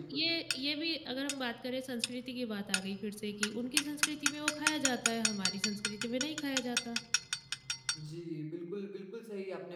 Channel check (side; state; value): both; identical; correlation 1.00